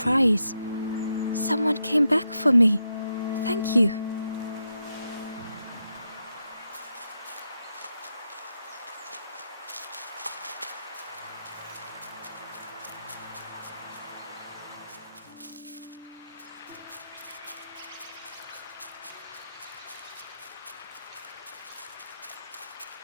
"Someone came back for me. Thank you."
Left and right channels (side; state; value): both; inverted; correlation -0.84